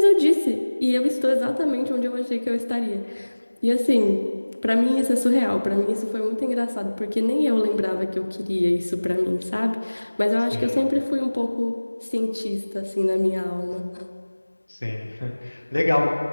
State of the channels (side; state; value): both; inverted; correlation -1.00